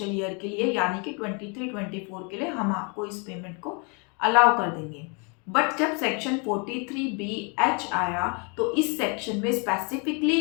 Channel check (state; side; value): quieter; right; 34.6 dB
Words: ईयर के लिए, यानी कि 23-24 के लिए हम आपको इस पेमेंट को अलाउ कर देंगे। बट जब सेक्शन 43BH आया तो इस सेक्शन में स्पेसिफिकली